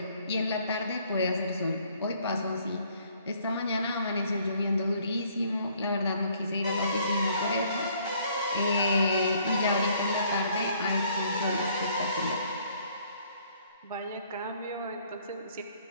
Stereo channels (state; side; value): inverted; both; correlation -0.63